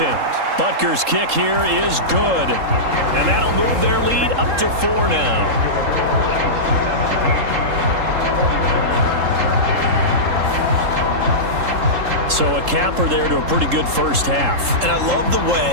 Butker's kick here is good. And that'll move their lead up to 4 now. So a capper there to a pretty good first half. And I love the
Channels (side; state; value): left; late; 3.7 ms